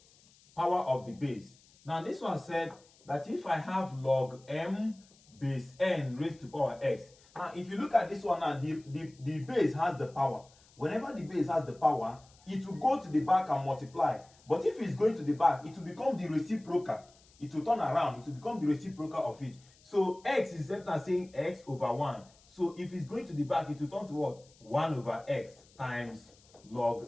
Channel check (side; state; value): left; noise; hiss, 28 dB below the sound